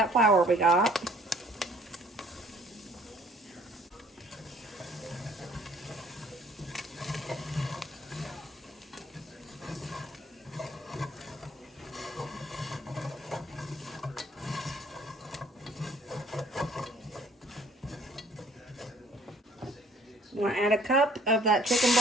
flour we got. I'm going to add a cup of that chicken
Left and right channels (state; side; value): normal; both; correlation 0.58